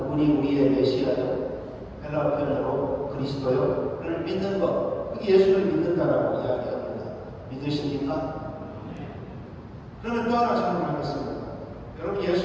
우리의 메시아요, 헬라 표현으로 그리스도요를 믿는 것, 그게 예수를 믿는다라고 이야기합니다. 믿으십니까? 그러면 또 하나 질문하겠습니다. 여러분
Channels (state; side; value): identical; both; correlation 1.00